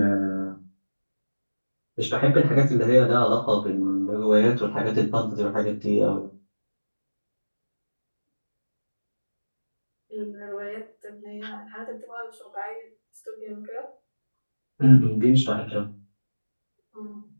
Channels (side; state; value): both; inverted; correlation -1.00